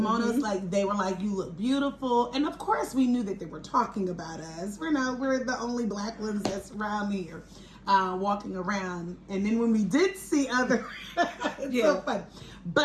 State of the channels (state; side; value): identical; both; correlation 1.00